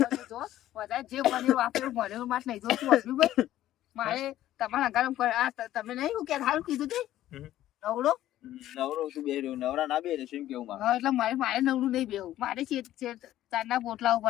જો વધારે જે બન્યું વાપર્યું ભણેલું માસ નહીં જોતું હતું ભાઈ મારે તમારા ગરમ તમે નહીં હું કે સારું કીધું તે હમ. નવડો નવરો તું બે રહ્યો નવરા ના બે રહ્યો એમ કેવું મારે હા એટલે મારે નવડું નહીં બેવું મારે ચારના પોટલા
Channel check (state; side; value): quieter; right; 13.4 dB